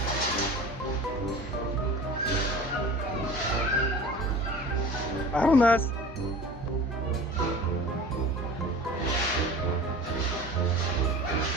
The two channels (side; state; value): both; normal; correlation 0.39